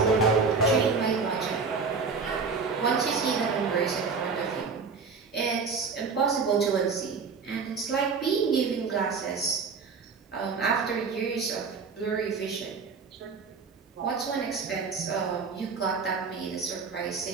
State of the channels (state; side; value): quieter; left; 5.0 dB